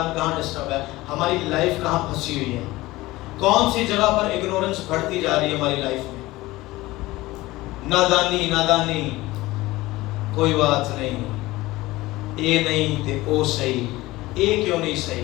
کہاں ڈسٹرب ہے، ہماری لائف کہاں پھنسی ہوئی ہے، کون سی جگہ پر اگنورنس بڑھتی جا رہی ہے ہماری لائف میں۔ نادانی نادانی، کوئی بات نہیں، اے نہیں تے او صحیح، اے کیوں نہیں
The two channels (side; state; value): right; quieter; 19.0 dB